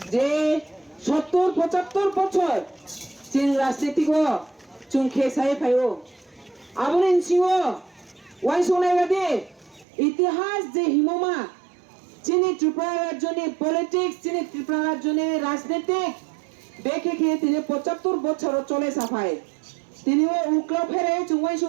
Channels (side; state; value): left; drops out; at 9.9 s